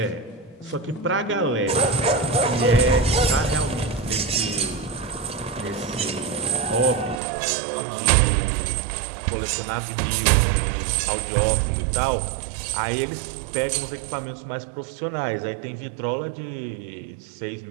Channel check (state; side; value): drops out; left; at 7.2 s